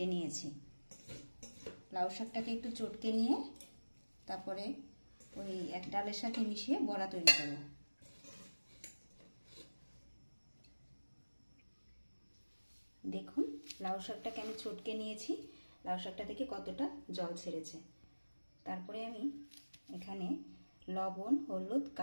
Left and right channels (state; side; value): inverted; both; correlation -1.00